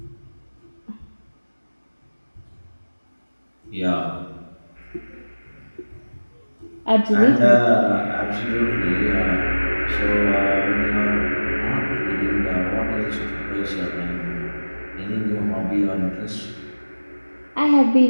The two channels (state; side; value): inverted; both; correlation -1.00